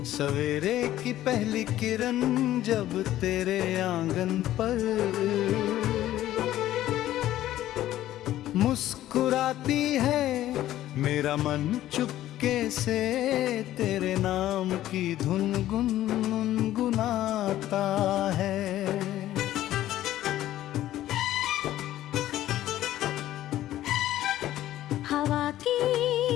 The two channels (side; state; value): right; quieter; 13.7 dB